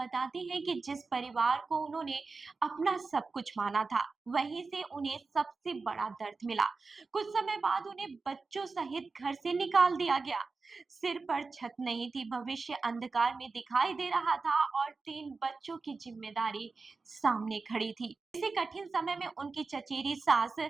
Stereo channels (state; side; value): quieter; left; 4.2 dB